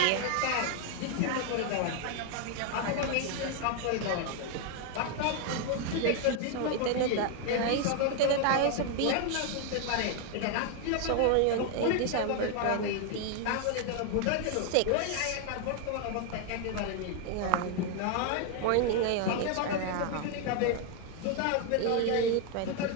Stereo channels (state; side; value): different; both; correlation 0.01